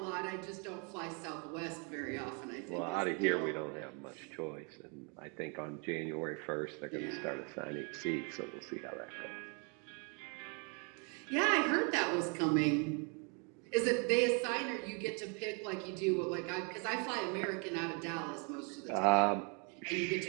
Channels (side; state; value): left; quieter; 35.4 dB